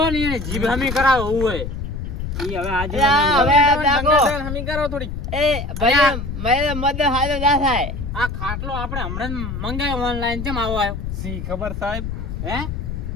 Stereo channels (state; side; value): noise; left; rumble, 5 dB below the sound